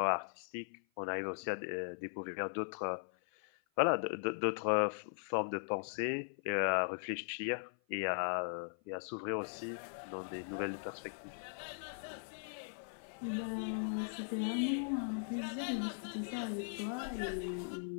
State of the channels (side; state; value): right; silent; 52 dB below the other